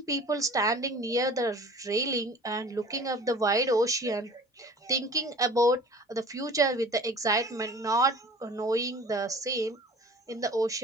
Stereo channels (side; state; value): both; normal; correlation 0.44